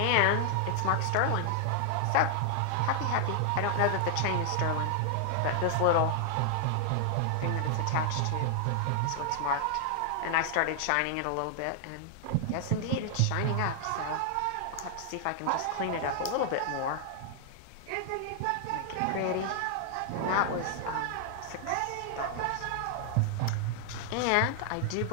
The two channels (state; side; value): different; both; correlation 0.00